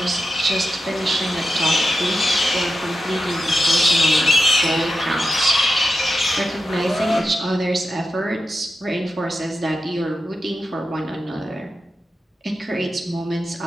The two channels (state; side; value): normal; both; correlation 0.90